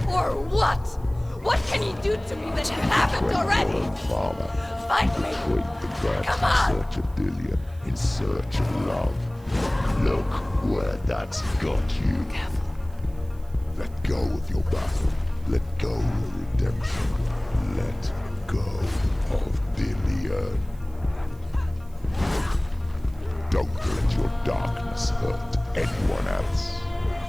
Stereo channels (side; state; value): right; noise; hiss, 28 dB below the sound